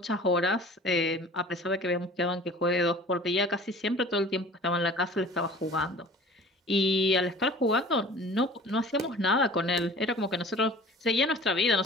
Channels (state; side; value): normal; both; correlation 0.44